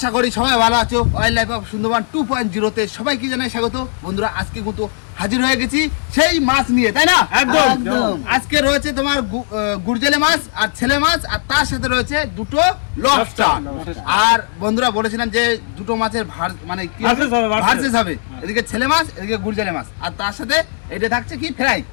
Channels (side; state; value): right; silent; digital silence